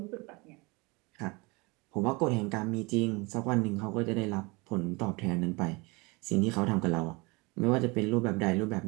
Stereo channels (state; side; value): quieter; left; 26.3 dB